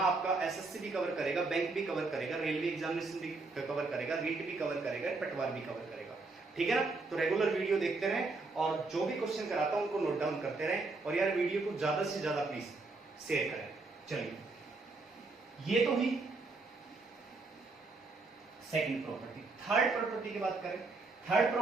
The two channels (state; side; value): quieter; left; 3.6 dB